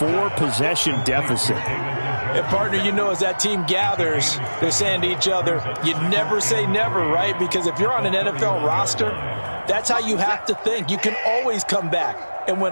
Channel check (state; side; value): inverted; both; correlation -1.00